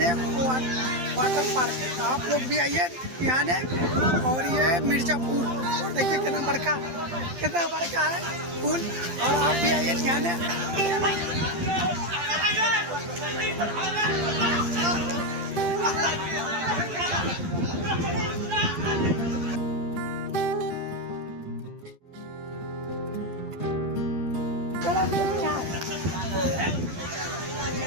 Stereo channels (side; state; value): left; late; 12 ms